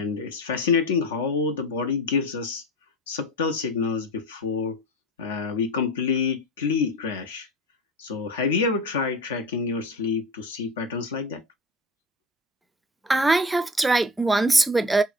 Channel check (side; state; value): both; normal; correlation 0.33